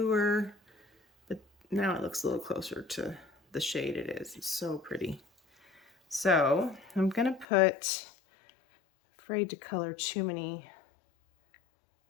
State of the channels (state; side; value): drops out; right; at 7.5 s